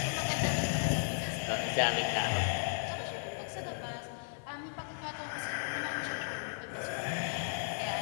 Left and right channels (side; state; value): right; silent; digital silence